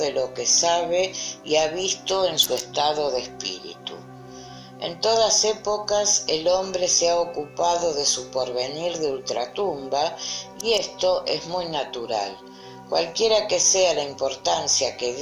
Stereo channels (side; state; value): both; identical; correlation 1.00